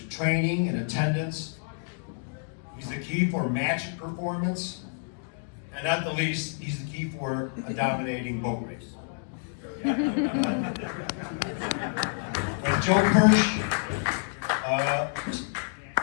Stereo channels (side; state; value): right; silent; 59 dB below the other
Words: training and attendance. He's the key for match performance. And at the least, he's the key for a dominating boat race. When Joe Kirsch